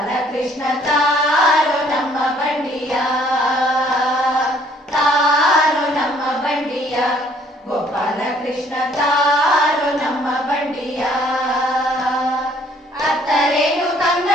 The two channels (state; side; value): normal; both; correlation 0.61